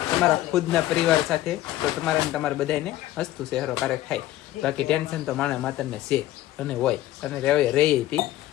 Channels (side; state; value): right; quieter; 14.7 dB